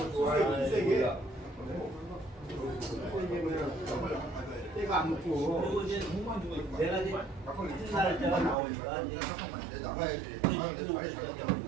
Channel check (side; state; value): left; drops out; at 8.6 s